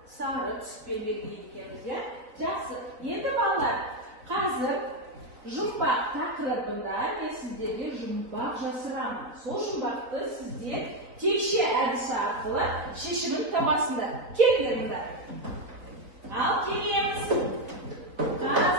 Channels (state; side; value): late; left; 4.0 ms